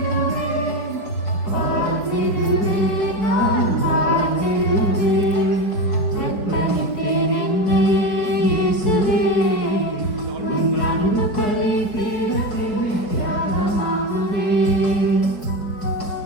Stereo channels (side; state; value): right; late; 4.6 ms